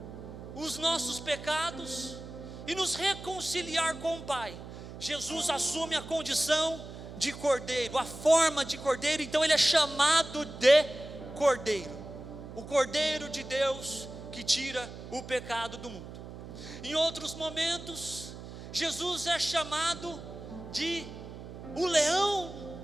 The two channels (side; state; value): right; noise; hum, 12 dB below the sound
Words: os nossos pecados e nos reconciliar com o Pai. Jesus assume a condição de cordeiro, a forma de cordeiro, então ele é chamado de cordeiro, o cordeiro de Deus que tira o pecado do mundo. Em outros momentos, Jesus é chamado de o